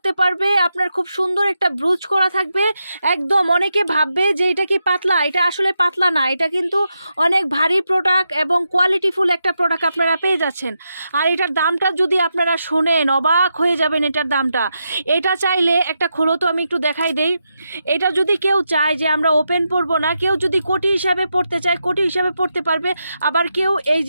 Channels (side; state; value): both; inverted; correlation -0.85